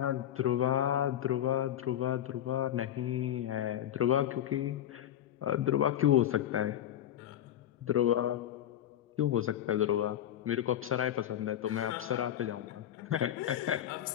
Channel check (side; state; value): right; quieter; 11.3 dB